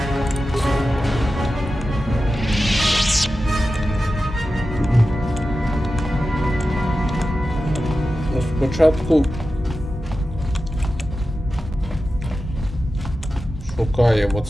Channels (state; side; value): normal; both; correlation 0.93